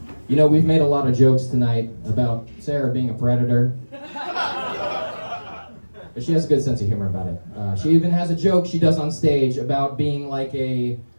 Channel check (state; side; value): inverted; both; correlation -1.00